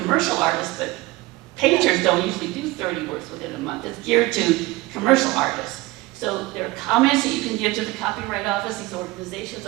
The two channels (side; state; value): left; quieter; 20.3 dB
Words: artist, but painters don't usually do 30 works within a month. It's geared to commercial artists. So there are comments that you can give to the Copyright Office. These organizations